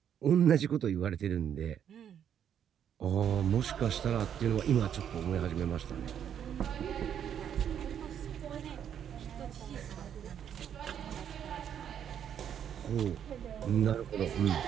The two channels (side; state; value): left; quieter; 9.0 dB